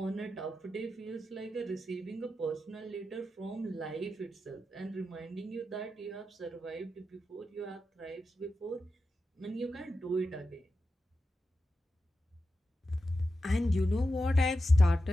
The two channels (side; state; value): both; normal; correlation 0.90